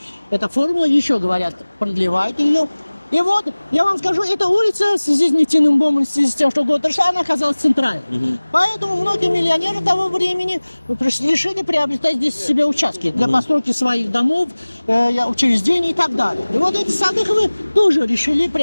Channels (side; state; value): both; inverted; correlation -1.00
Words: эта формула. Еще, говорят, продлевают ее. И вот, я вам скажу, эта улица в связи с нефтяным бомбом, в связи с тем, что год прошла, она оказалась центральной. Мгм. Поэтому многие миллионеры того времени решили приобретать здесь себе участки для постройки своих домов, учреждений и так далее. И вот эти Садыховы тоже решили